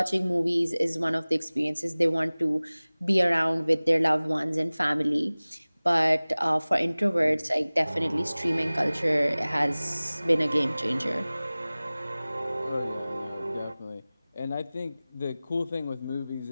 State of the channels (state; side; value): inverted; both; correlation -0.99